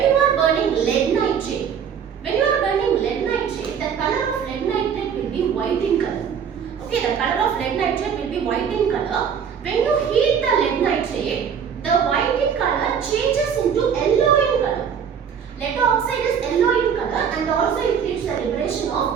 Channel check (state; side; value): quieter; left; 7.4 dB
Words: you are burning lead nitrate, the color of lead nitrate will be white in color. Okay, the color of lead nitrate will be white in color. When you heat the lead nitrate, the white in color changes into yellow in color. Lead oxide is yellow in color and also it leads the liberation